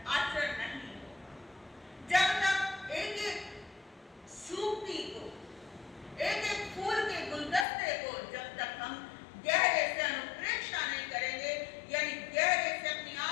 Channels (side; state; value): right; drops out; at 7.7 s